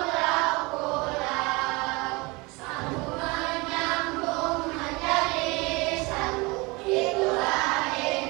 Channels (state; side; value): quieter; left; 25.5 dB